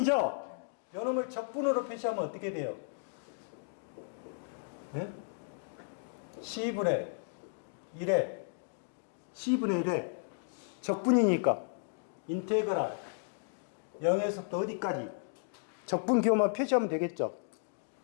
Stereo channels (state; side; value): silent; right; digital silence